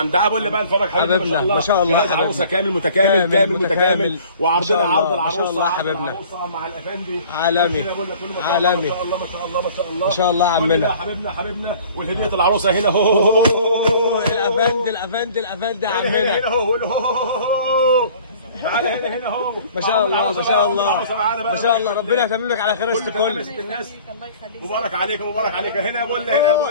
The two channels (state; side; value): inverted; both; correlation -0.50